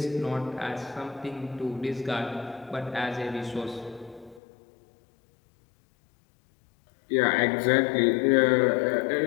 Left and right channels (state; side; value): drops out; right; at 4.4 s